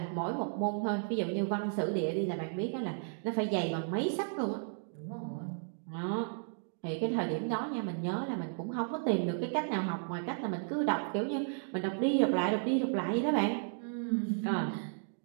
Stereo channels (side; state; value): left; silent; digital silence